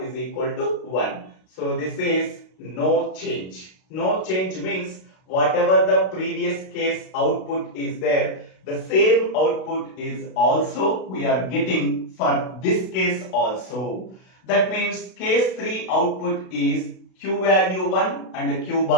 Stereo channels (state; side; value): late; right; 32 ms